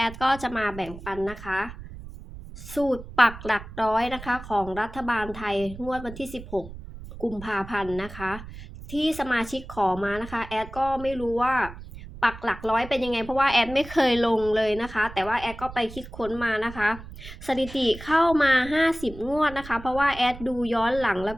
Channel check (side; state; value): right; noise; rumble, 14 dB below the sound